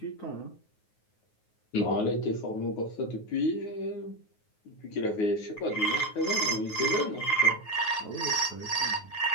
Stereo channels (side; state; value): right; late; 9.4 ms